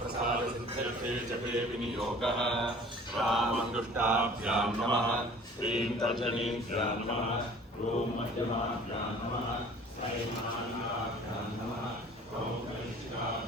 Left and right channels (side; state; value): both; normal; correlation 0.48